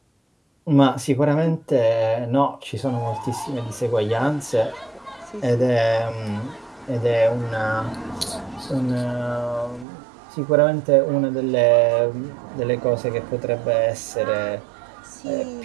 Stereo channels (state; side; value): drops out; left; at 9.9 s